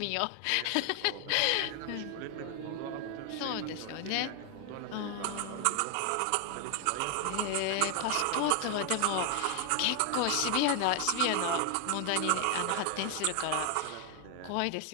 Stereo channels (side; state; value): both; different; correlation 0.01